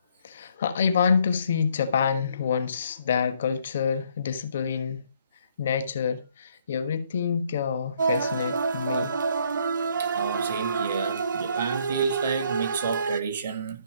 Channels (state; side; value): inverted; both; correlation -0.66